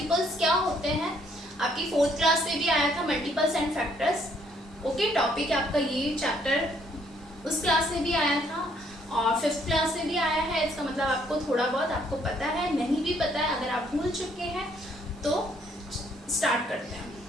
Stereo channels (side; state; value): both; normal; correlation 0.67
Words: क्या होते हैं? आपकी 4th क्लास में भी आया था multiples and factors. Okay, topic आपका ये चैप्टर उस क्लास में भी आया था और 5th क्लास में भी आया है. इसका मतलब आपको थोड़ा बहुत आपको पता है, नहीं भी पता है, अगर आप भूल चुके हैं तो स्टार्ट करते हैं.